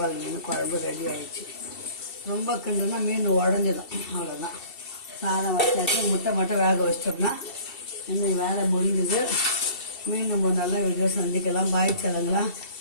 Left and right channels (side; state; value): right; late; 2.7 ms